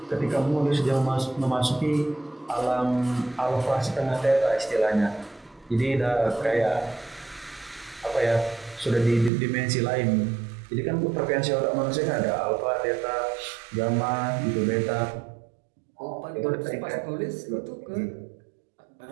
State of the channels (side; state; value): left; drops out; at 9.3 s